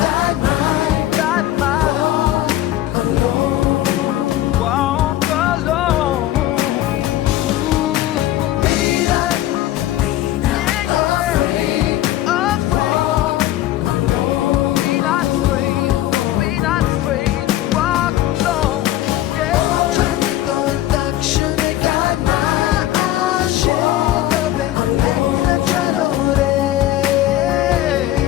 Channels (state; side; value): quieter; right; 14.2 dB